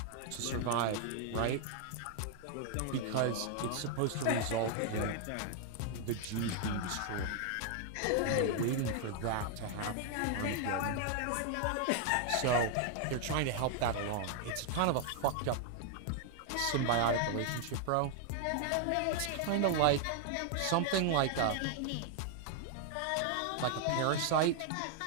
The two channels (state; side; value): different; both; correlation 0.00